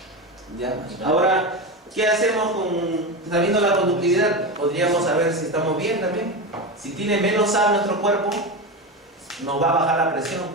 ¿Ya? Ahora, ¿qué hacemos sabiendo la conductividad? Podríamos saber si estamos bien también. Si tiene menos sal nuestro cuerpo, nos va a bajar la presión.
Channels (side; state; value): both; normal; correlation 0.19